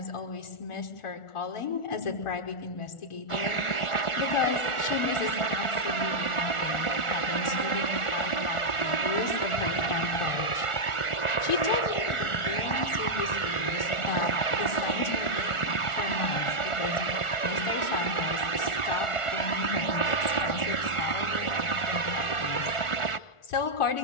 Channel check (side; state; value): right; late; 1.4 ms